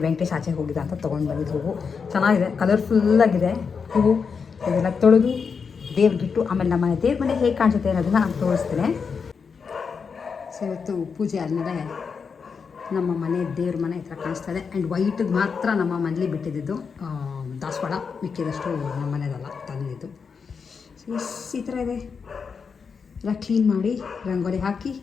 ವೆಂಕಟೇಶ್ ಆಚೆ ಹೋಗಿದ್ದ ಅಂತ ತೊಗೊಂಡು ಬಂದಿದ್ದು ಹೂವು ಚೆನ್ನಾಗಿದೆ, ಕಲರ್ಫುಲ್ಲಾಗಿದೆ ಹೂವು. ಇದೆಲ್ಲ ತೊಳೆದು ದೇವ್ರಿಗಿಟ್ಟು ಆಮೇಲೆ ನಮ್ಮ ದೇವ್ರ ಮನೆ ಹೇಗೆ ಕಾಣಿಸುತ್ತೆ ಅನ್ನೋದನ್ನು ನಾನು ತೋರಿಸ್ತೇನೆ. ಸೊ ಇವತ್ತು ಪೂಜೆ ಆದಮೇಲೆ ನಮ್ಮ ಮನೆ ದೇವ್ರ ಮನೆ ಈ ಥರ ಕಾಣಿಸ್ತಾ ಇದೆ. ಆ್ಯಂಡ್ ವೈಟಿಗೆ ಮಾತ್ರ ನಮ್ಮ ಮನೇಲಿ ಬಿಟ್ಟಿದ್ದು ದಾಸವಾಳ, ಮಿಕ್ಕಿದಷ್ಟು ನಮ್ಮ ಮನೆಯದಲ್ಲ ತಂದಿದ್ದು. ಸೊ ಈ ಥರ ಇದೆ. ಎಲ್ಲ ಕ್ಲೀನ್ ಮಾಡಿ ರಂಗೋಲಿ ಹಾಕಿ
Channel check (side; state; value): right; quieter; 5.7 dB